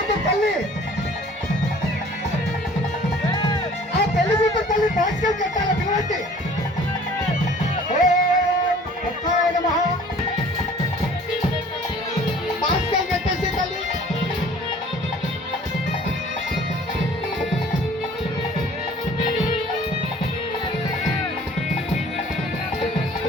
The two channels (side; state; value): both; normal; correlation 0.50